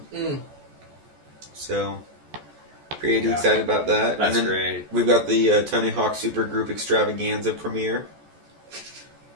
Mm. so pretty Yeah. excited about that. That's and then great. We've got the Tony Hawk Supergroup Extravaganza premiere.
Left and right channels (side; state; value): left; late; 14 ms